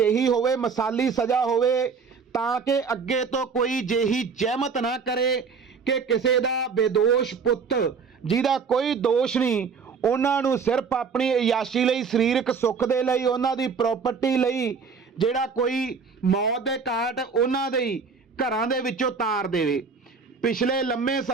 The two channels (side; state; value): left; quieter; 5.5 dB